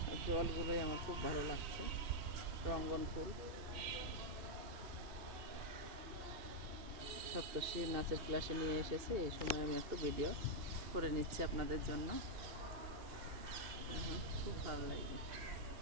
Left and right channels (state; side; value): late; left; 2.8 ms